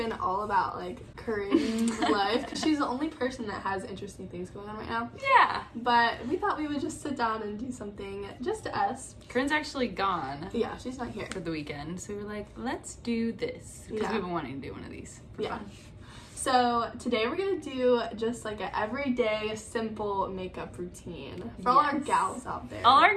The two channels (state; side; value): identical; both; correlation 1.00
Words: all about like Corinne's life because she's the only person that has interesting things going on right now. Yeah. But we thought we would just sit down and do something just us. Corinne's actually gone. Yeah, she's not here for the weekend. So we were like, let's do this. Because we've been wanting to do one of these for fun. So today we're gonna do just like an everyday simple makeup routine for all our gals out there. All our